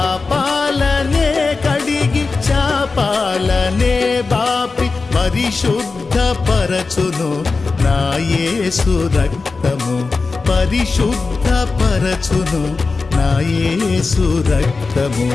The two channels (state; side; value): quieter; right; 4.1 dB